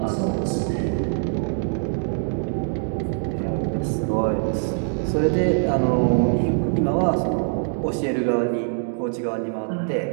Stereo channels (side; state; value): left; silent; digital silence